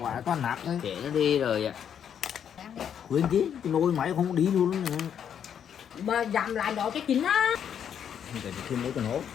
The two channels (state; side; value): quieter; right; 8.6 dB